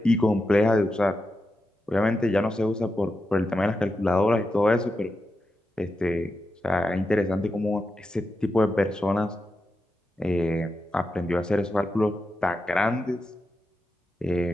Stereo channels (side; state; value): both; normal; correlation 0.88